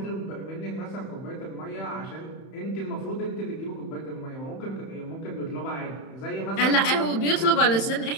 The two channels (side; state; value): right; late; 31 ms